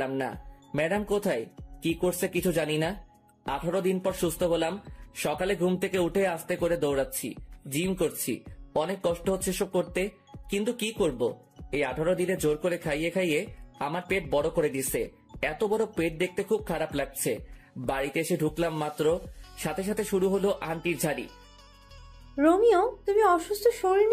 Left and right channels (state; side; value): identical; both; correlation 1.00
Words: না। ম্যাডাম কোথায়, কি করছে কিছু জানি না। 18 দিন পর সুস্থ হলাম। সকালে ঘুম থেকে উঠে আস্তে করে দৌড়াচ্ছি, জিম করছি। অনেক কষ্ট হচ্ছে সব করতে, কিন্তু কি করব। এই 18 দিনে জোর করে খাইয়ে খাইয়ে আমার পেট বড় করে দিছে। এত বড় পেট দেখতে খুব খারাপ লাগছে। বাড়িতে এসে ঢুকলাম মাত্র, সাথে সাথে শুরু হলো আন্টির ঝাড়ি। রোমিও, তুমি অসুস্থ শরীর